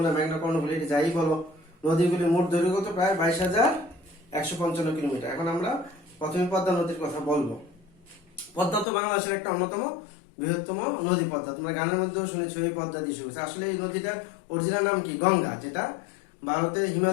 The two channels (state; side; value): drops out; right; at 8.8 s